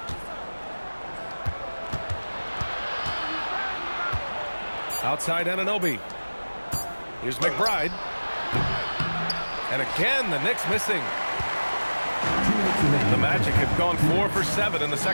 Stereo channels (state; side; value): inverted; both; correlation -1.00